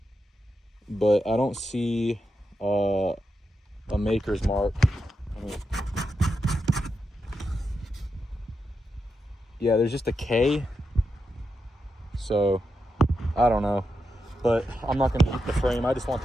but I don't see a maker's mark. Yeah, there's just a K, so I don't know, but I'm not gonna keep the frame. I just want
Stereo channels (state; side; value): normal; both; correlation 0.86